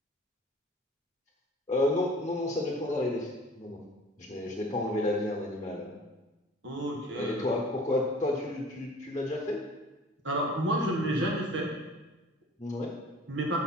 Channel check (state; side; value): normal; both; correlation 0.46